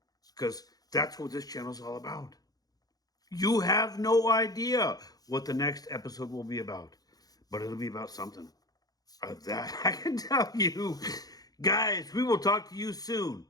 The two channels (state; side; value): late; right; 0.18 ms